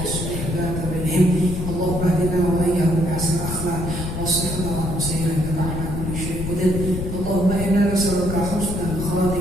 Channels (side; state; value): left; noise; rumble, 5 dB below the sound